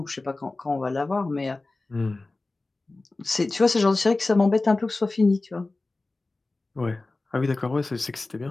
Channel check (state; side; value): quieter; right; 3.2 dB